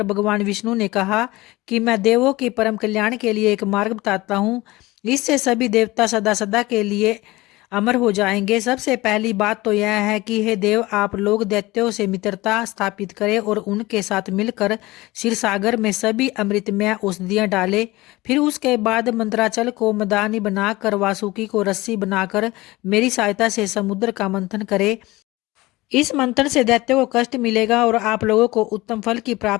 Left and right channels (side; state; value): right; quieter; 20.0 dB